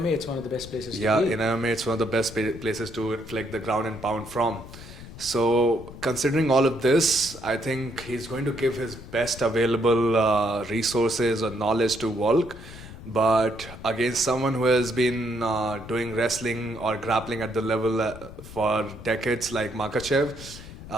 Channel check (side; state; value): left; noise; rumble, 15 dB below the sound